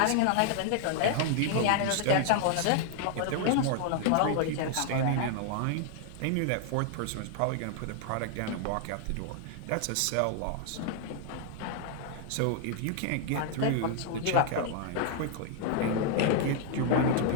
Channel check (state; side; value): different; both; correlation 0.00